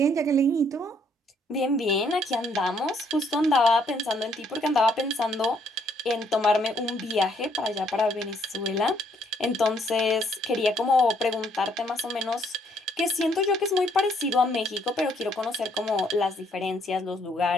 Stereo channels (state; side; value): normal; both; correlation 0.68